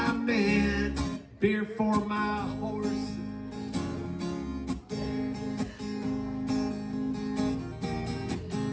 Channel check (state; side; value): identical; both; correlation 1.00